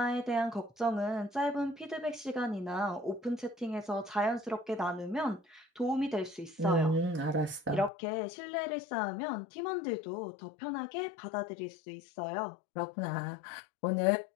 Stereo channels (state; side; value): drops out; right; at 7.9 s